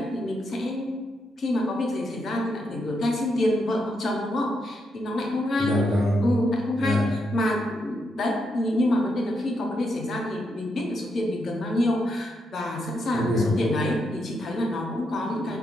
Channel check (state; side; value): normal; both; correlation 0.81